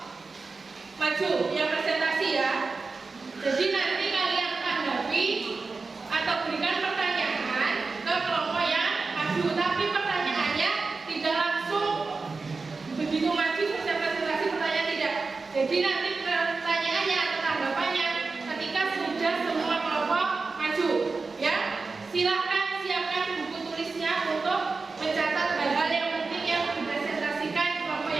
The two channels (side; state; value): left; quieter; 4.1 dB